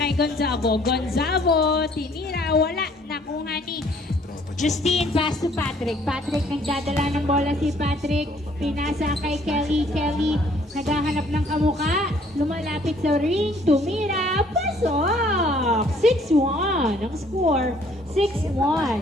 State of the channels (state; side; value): normal; both; correlation 0.61